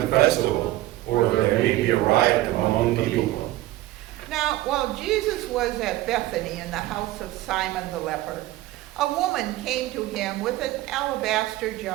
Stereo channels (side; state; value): left; quieter; 16.3 dB